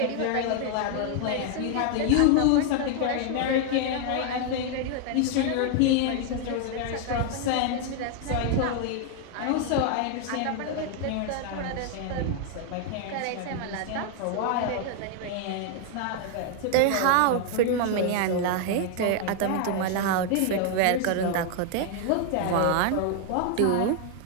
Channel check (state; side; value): different; both; correlation 0.00